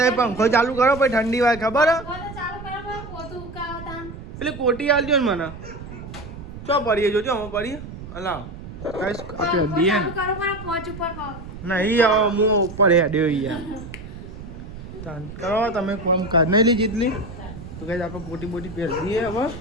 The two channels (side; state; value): right; noise; rumble, 12 dB below the sound